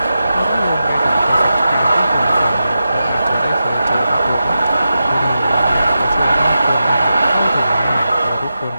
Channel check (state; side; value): inverted; both; correlation -0.89